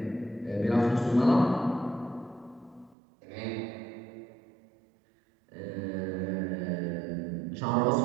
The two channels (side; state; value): left; drops out; at 3.0 s